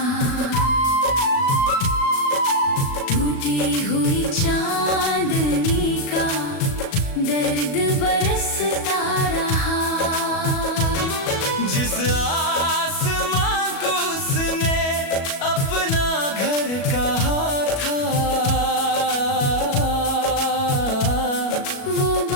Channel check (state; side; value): late; right; 37 ms